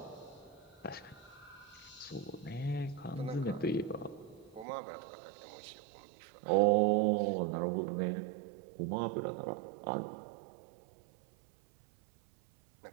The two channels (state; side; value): drops out; left; at 4.7 s